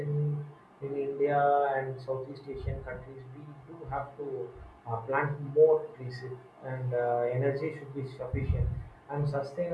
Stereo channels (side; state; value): both; identical; correlation 1.00